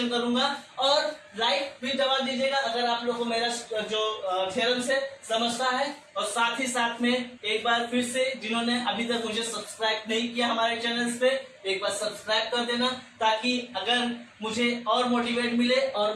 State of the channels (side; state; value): both; identical; correlation 1.00